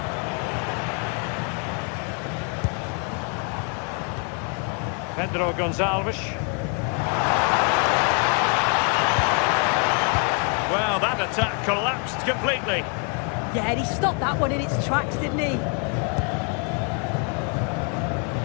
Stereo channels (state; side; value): quieter; right; 38.5 dB